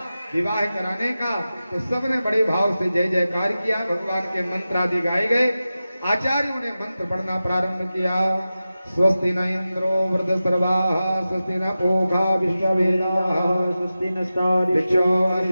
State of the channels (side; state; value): both; inverted; correlation -0.94